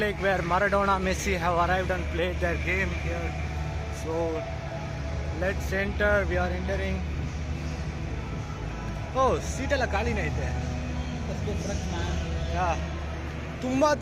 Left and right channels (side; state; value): both; identical; correlation 1.00